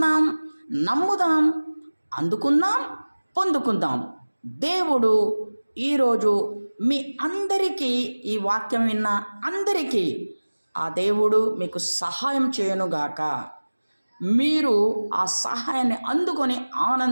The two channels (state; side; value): inverted; both; correlation -1.00